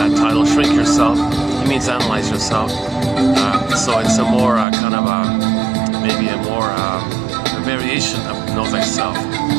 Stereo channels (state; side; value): drops out; left; at 4.7 s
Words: title, Shrink Yourself. He means analyze yourself. So it's a more maybe a more a variation of know thyself.